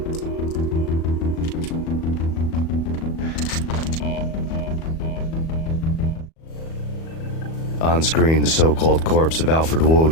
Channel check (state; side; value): late; right; 37 ms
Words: On screen, the so-called corpse of Alfred